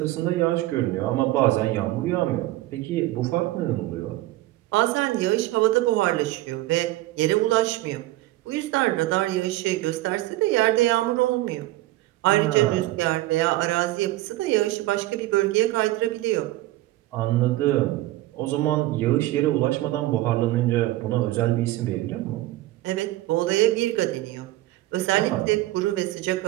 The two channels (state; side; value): quieter; left; 17.0 dB